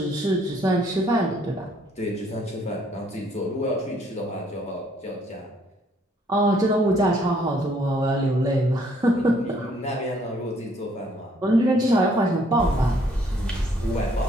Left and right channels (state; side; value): normal; both; correlation 0.65